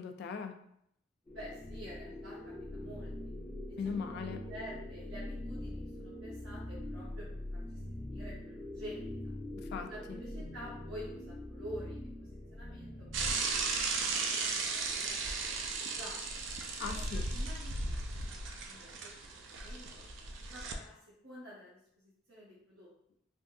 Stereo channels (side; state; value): both; normal; correlation 0.45